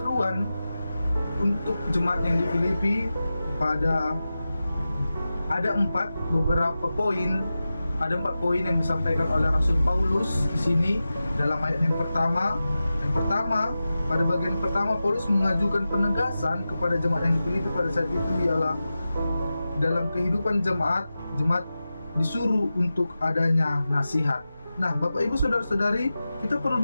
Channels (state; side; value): inverted; both; correlation -0.93